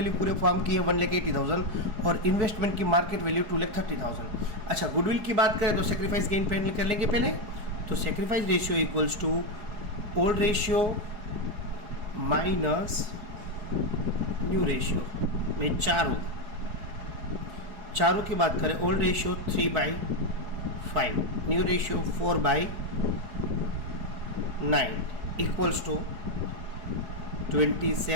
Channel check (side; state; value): left; late; 4.8 ms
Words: पूरे फॉर्म की है 1,80,000 और इन्वेस्टमेंट की मार्केट वैल्यू 2,30,000। अच्छा, गुडविल की बात करें तो सेक्रीफाइस गेन कर लेंगे पहले। तो sacrifice ratio equals to old ratio minus new ratio में चारू की बात करें, old ratio 3/5, new ratio 4/9 equals to